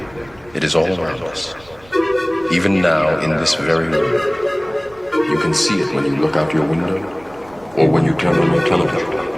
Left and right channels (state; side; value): noise; right; rumble, 25 dB below the sound